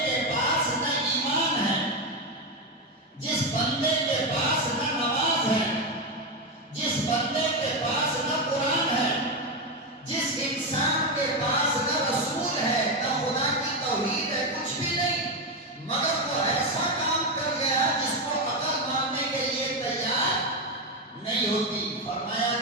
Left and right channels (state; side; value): normal; both; correlation 0.09